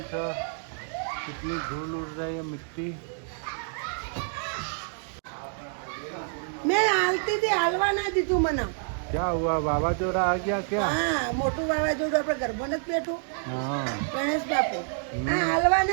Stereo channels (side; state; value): left; silent; 59 dB below the other